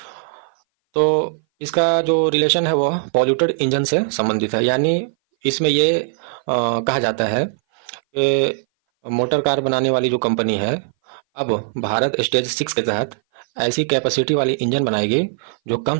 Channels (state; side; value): silent; left; 59 dB below the other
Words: तो इसका जो रिलेशन है वो पॉल्यूटेड इंजन से संबंधित है, यानी इसमें ये कहा जाता है कि मोटर कार बनाने वाली जो कंपनी है अब भारत स्टेज 6 के तहत ऐसी कैपेसिटी वाली इंजन बनाएगी जो कम